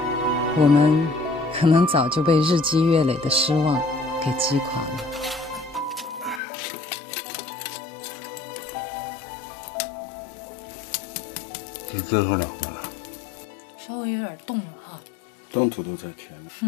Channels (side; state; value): right; drops out; at 6.4 s